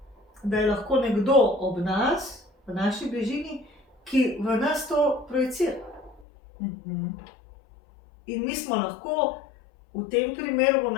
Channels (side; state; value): right; drops out; at 6.2 s